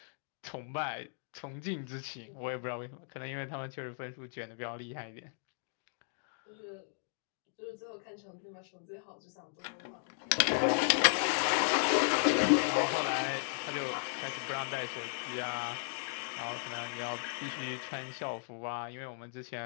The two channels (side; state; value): right; silent; digital silence